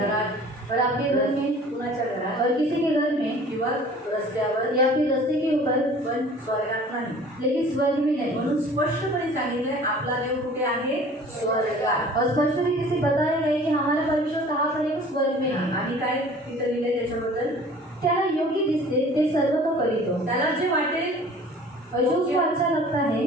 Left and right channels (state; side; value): normal; both; correlation 0.47